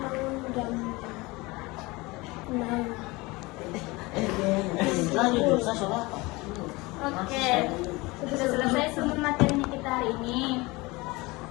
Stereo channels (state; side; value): quieter; right; 23.2 dB